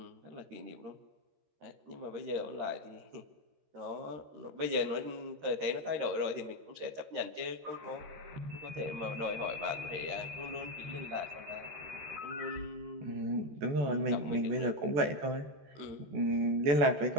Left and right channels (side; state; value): left; late; 13 ms